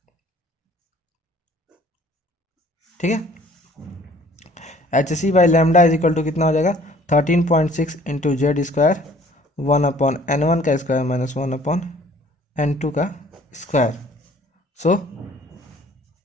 ठीक है, h c by lambda is equal to कितना हो जाएगा 13.6 इंटू जेड स्क्वायर 1/N1 का स्क्वायर -1/N2 का स्क्वायर। सो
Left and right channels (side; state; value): both; normal; correlation 0.55